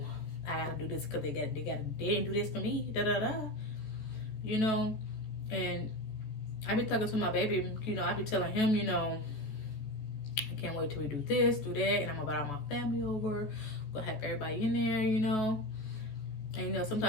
I gotta do this because they didn't do this for me, you know. And I be talking to my baby, you know, I be telling him, you know, I can't wait till we do this, do that, and I'm gonna invite all my family over, gonna have everybody in there, you know. And you know,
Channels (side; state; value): right; late; 14 ms